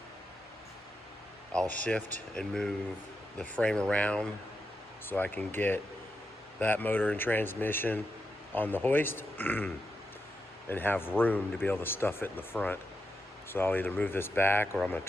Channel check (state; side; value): normal; both; correlation 0.86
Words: I'll shift and move the frame around so I can get that motor and transmission on the hoist and have room to be able to stuff it in the front. So I'll either move this back or I'm gonna